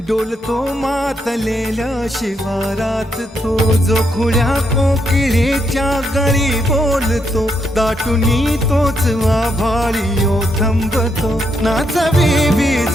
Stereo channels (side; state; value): both; normal; correlation 0.78